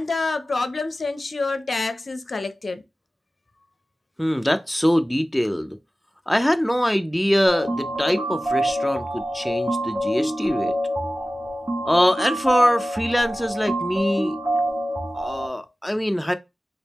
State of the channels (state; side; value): normal; both; correlation 0.96